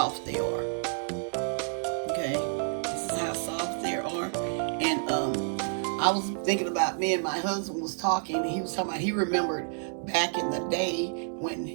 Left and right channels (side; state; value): left; silent; digital silence